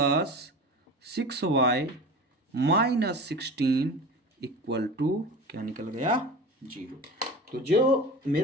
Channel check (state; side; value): normal; both; correlation 0.34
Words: 6y - 16 = क्या निकल गया, 0। तो जो